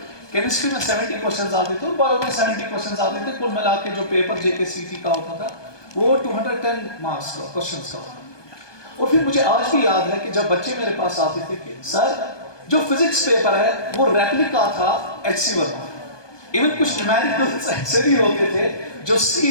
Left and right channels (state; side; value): late; right; 1.2 ms